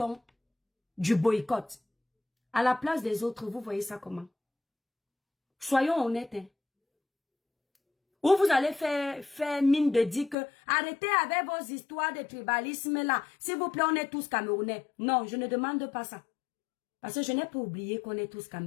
du boycott. À la place des autres, vous voyez ça comment? Soyons honnêtes. Hein? Ou vous allez faire mine de dire que arrêtez avec vos histoires de tribalisme là. S'il vous plaît, on est tous Camerounais. Non, je ne demande pas ça. Parce que je n'ai pas oublié qu'on est tous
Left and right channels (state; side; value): drops out; right; at 10.4 s